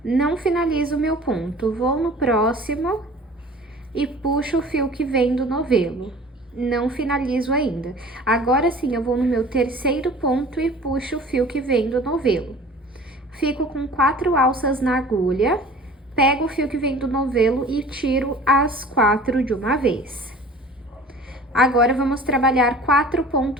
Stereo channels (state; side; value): normal; both; correlation 0.45